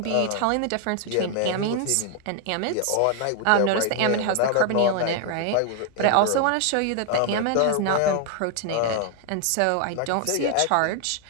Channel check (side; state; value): both; different; correlation 0.00